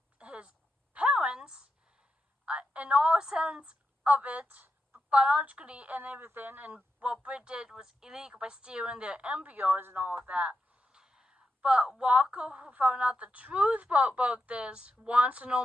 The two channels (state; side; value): normal; both; correlation 0.87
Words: his parents, in all sense of it, biologically and everything. And what Britt did was illegal by stealing their embryos and all of that. But Walker, who found out the truth about this, wants to